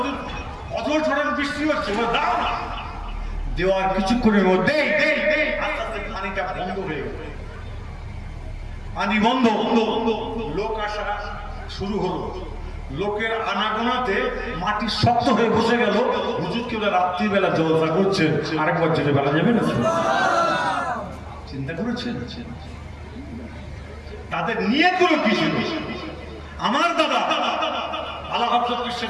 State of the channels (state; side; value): identical; both; correlation 1.00